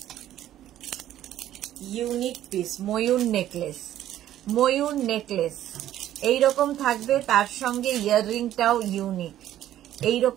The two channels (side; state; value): left; quieter; 12.4 dB